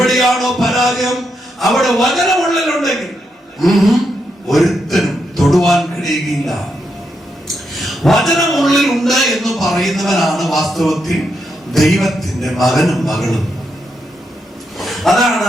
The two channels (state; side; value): normal; both; correlation 0.82